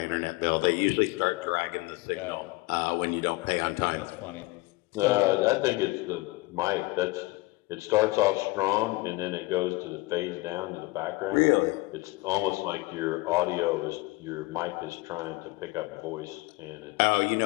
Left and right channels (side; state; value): right; quieter; 22.5 dB